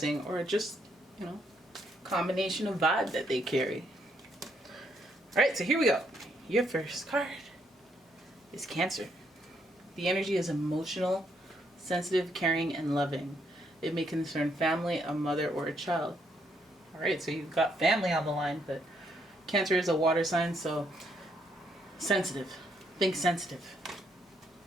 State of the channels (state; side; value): normal; both; correlation 0.74